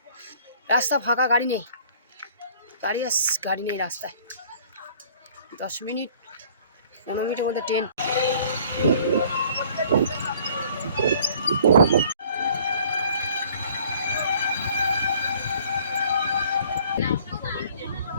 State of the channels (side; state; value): both; inverted; correlation -0.55